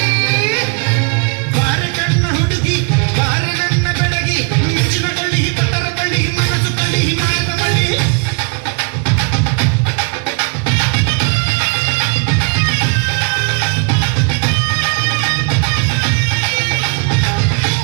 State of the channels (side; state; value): left; quieter; 37.3 dB